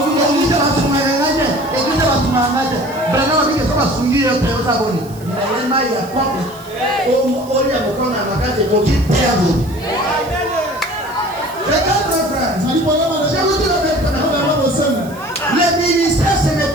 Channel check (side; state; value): right; noise; hiss, 22 dB below the sound